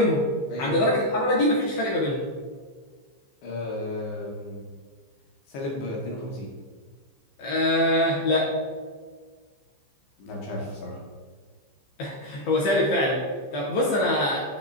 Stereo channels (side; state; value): right; late; 15 ms